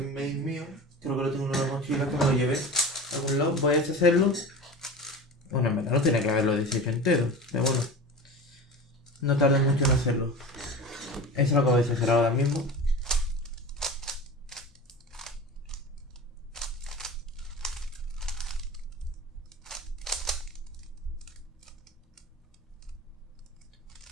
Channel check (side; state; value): both; normal; correlation 0.32